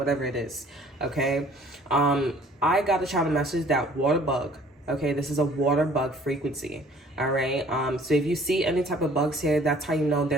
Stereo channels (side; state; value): both; normal; correlation 0.54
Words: it is, okay? I got a channel message that water bug, okay? This is a water bug frequency, all right? So if you see any type of bugs here, that's how you know